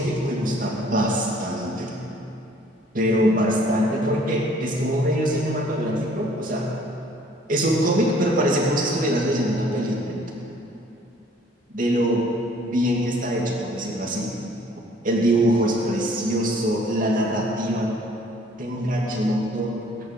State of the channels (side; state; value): both; normal; correlation 0.57